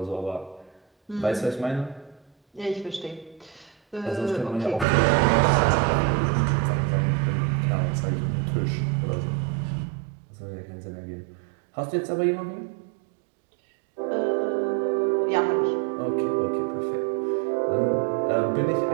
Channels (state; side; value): drops out; left; at 4.9 s